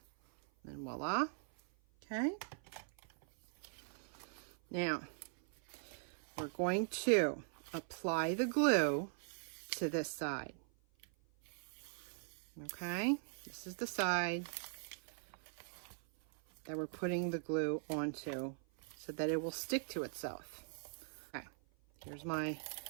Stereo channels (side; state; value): left; silent; 50 dB below the other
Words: And voila. Okay. Now, we're going to apply the glue to this side. Okay, this is the side that we're putting the glue onto so that it will stick to itself. Okay, here's my